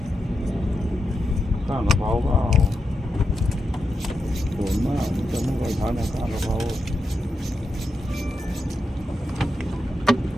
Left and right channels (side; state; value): both; normal; correlation 0.87